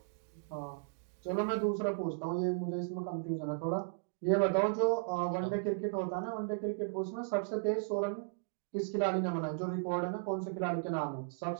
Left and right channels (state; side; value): silent; left; digital silence